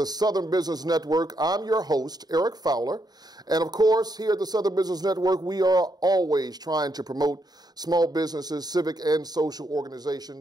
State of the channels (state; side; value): late; left; 0.19 ms